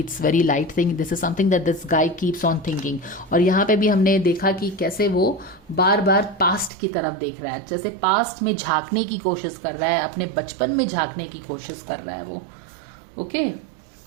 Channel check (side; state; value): left; drops out; at 6.7 s